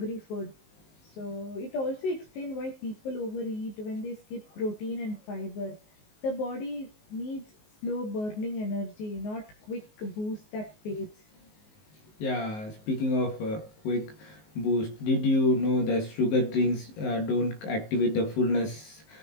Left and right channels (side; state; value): right; late; 19 ms